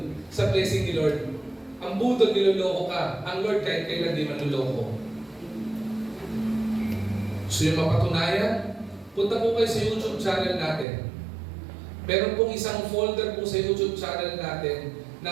sa blessing ni Lord. Ang budol, niloloko ka. Ang Lord kahit kailan di manloloko. So yung mapatunayan, punta po kayo sa YouTube channel natin. Meron pong isang folder po sa YouTube channel natin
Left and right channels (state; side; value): drops out; left; at 10.9 s